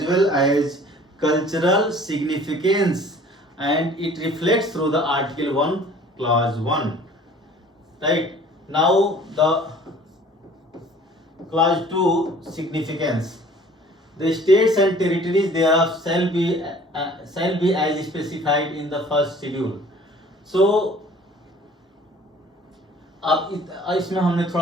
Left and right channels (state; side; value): normal; both; correlation 0.50